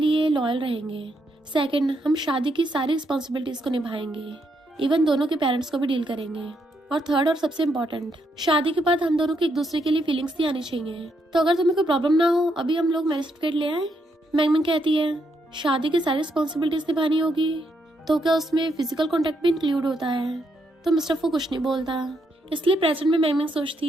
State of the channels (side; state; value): both; normal; correlation 0.78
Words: लॉयल रहेंगे। सेकंड, हम शादी की सारी रिस्पॉन्सिबिलिटीज को निभाएंगे, इवन दोनों के पेरेंट्स को भी डील करेंगे। और थर्ड और सबसे इम्पोर्टेंट, शादी के बाद हम दोनों की एक दूसरे के लिए फीलिंग्स नहीं आनी चाहिए। तो अगर तुम्हें कोई प्रॉब्लम ना हो अभी हम लोग मैरिज सर्टिफिकेट ले आए। मैंग कहती है शादी की सारी रिस्पॉन्सिबिलिटीज निभानी होगी तो क्या उसमें फिजिकल कॉन्टेक्ट भी इंक्लूड होता है? तो मिस्टर फू कुछ नहीं बोलता। इसलिए प्रेजेंट में मैंग